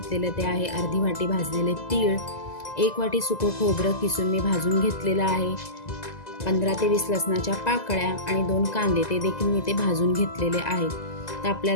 ते आहे अर्धी वाटी भाजलेले तीळ, 1 वाटी सुकं खोबरं किसून मी भाजून घेतलेलं आहे, 15 ते 20 लसणाच्या पाकळ्या आणि 2 कांदे ते देखील मी ते भाजून घेतलेले आहेत। तर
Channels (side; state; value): right; late; 2.0 ms